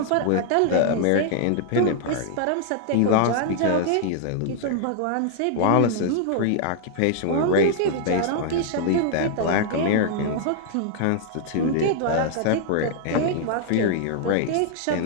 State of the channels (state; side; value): different; both; correlation 0.00